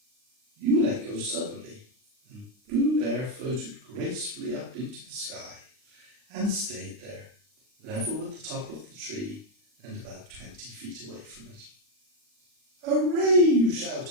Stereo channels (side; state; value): left; late; 39 ms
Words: you let go suddenly, and Pooh Bear floated gracefully up into the sky and stayed there, level with the top of the tree and about 20 feet away from it. "Hooray!" you